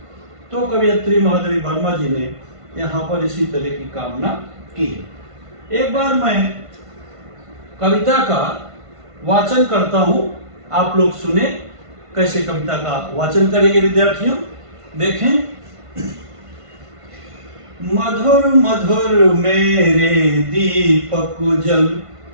तो कवयित्री महादेवी वर्मा जी ने यहाँ पर इसी तरह की कामना की है। एक बार मैं कविता का वाचन करता हूँ, आप लोग सुने कैसे कविता का वाचन करेंगे विद्यार्थियों, देखें। मधुर मधुर मेरे दीपक जल,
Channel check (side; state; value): left; late; 1.5 ms